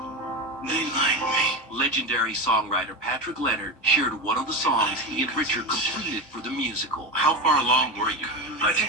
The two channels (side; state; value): both; normal; correlation 0.20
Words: do they like me? Legendary songwriter Patrick Leonard shared one of the songs he and Richard completed for the musical. How far along were you? I think